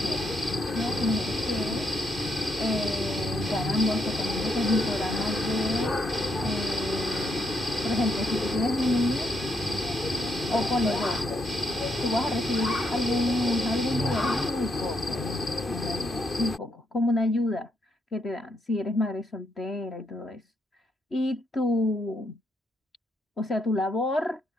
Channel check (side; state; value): both; normal; correlation 0.77